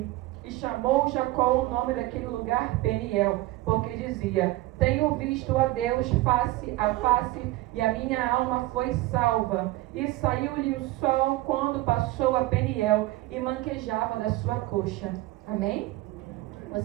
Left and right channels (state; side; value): quieter; left; 17.9 dB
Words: E chamou Jacó o nome daquele lugar Peniel, porque dizia: tenho visto a Deus face a face, e a minha alma foi salva. E saiu-lhe o sol quando passou a Peniel, e manquejava da sua coxa. Amém?